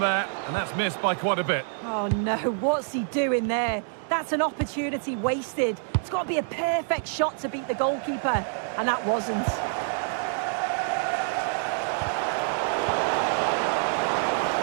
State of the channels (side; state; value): left; silent; digital silence